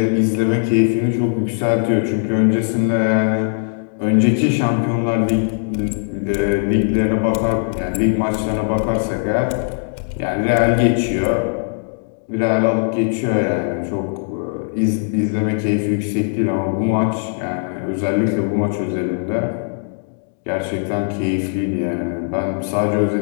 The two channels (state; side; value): silent; right; digital silence